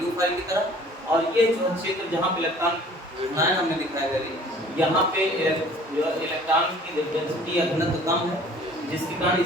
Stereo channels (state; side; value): normal; both; correlation 0.51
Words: की तरह, और ये जो क्षेत्र जहाँ पे इलेक्ट्रॉन ऋणायन हमने दिखाया है, यहाँ पे इलेक्ट्रॉन की डेंसिटी या घनत्व कम है, जिसके कारण